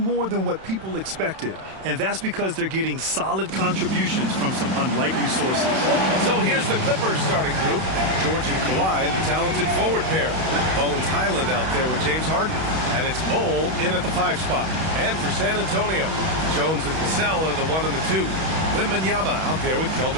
more than what people expected, and that's because they're getting solid contributions from some unlikely sources. So here's the Clippers starting group. George and Kawhi, the talented forward pair. Bones Highland out there with James Harden. And it's Bol in at the 5 spot. And for San Antonio, Jones and Vassell are the 1 and the 2. Wembanyama out there with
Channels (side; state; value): left; late; 31 ms